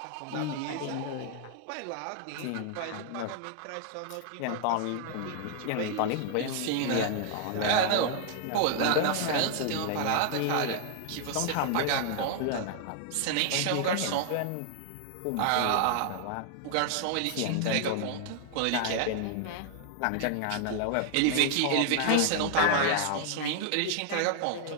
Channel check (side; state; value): both; different; correlation 0.00